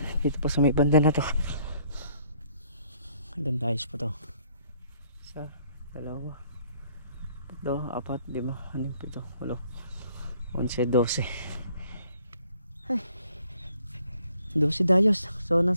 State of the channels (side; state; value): both; inverted; correlation -0.64